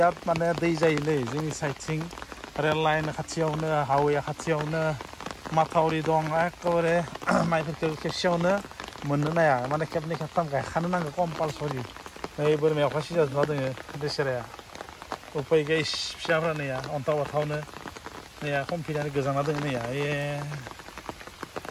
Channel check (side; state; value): both; identical; correlation 1.00